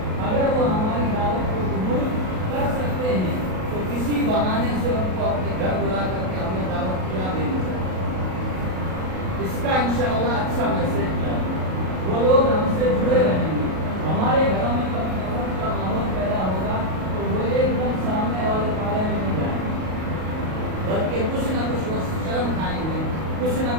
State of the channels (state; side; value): late; left; 38 ms